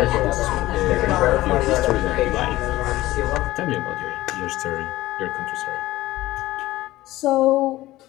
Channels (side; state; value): right; quieter; 16.9 dB